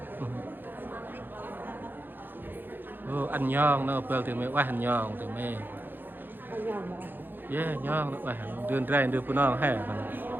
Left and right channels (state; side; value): late; left; 0.093 ms